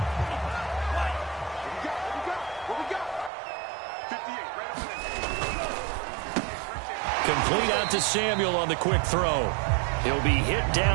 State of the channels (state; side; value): drops out; left; at 3.3 s